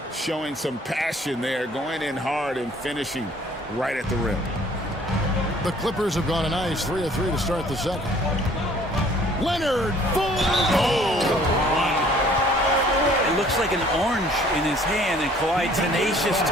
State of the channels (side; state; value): both; normal; correlation 0.56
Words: showing some passion there, going in hard and finishing right at the rim. The Clippers have gone a nice 3 of 3 to start the second. Leonard, full It looks like an orange in his hand, and Kawhi tenacious